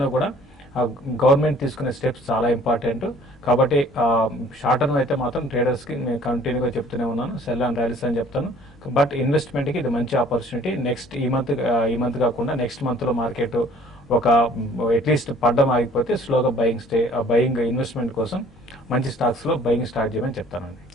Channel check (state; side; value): normal; both; correlation 0.54